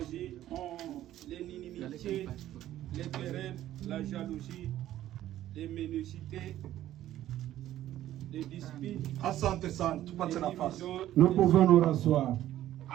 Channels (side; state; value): left; quieter; 13.1 dB